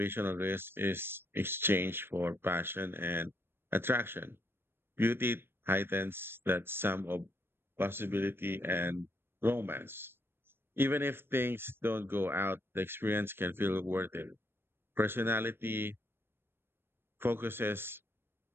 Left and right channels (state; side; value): late; left; 0.11 ms